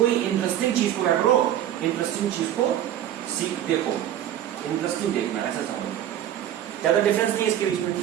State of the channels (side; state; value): left; quieter; 11.4 dB